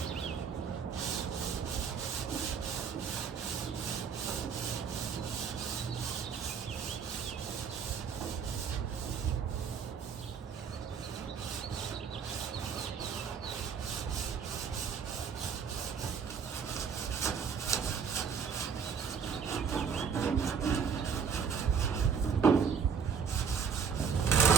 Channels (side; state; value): left; quieter; 6.5 dB